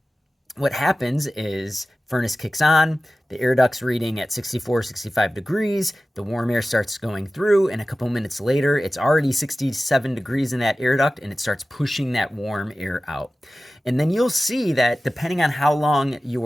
what happens is furnace kicks on, the air duct's reading at 64, 65 degrees, the warm air starts going through, and a couple minutes later, it's already 67 degrees in that air duct, and it starts pushing that warm air out. And then you'll see that depending on how long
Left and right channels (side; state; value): both; normal; correlation 0.96